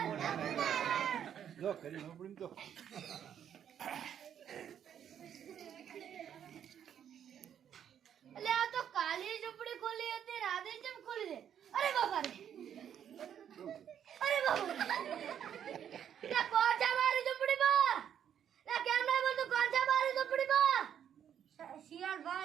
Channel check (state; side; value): quieter; left; 9.2 dB